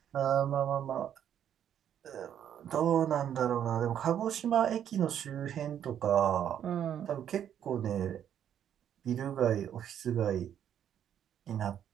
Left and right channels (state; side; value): quieter; left; 9.7 dB